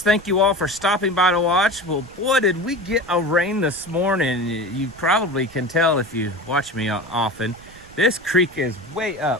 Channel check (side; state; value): right; noise; rumble, 23 dB below the sound